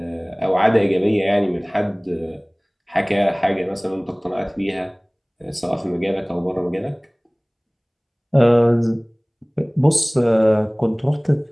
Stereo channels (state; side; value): identical; both; correlation 1.00